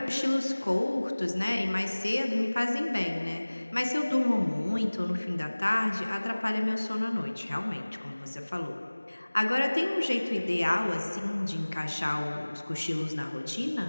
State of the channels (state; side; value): inverted; both; correlation -1.00